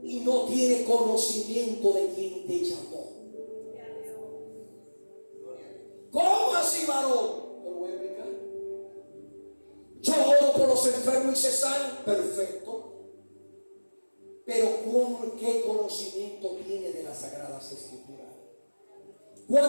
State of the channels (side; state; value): both; inverted; correlation -1.00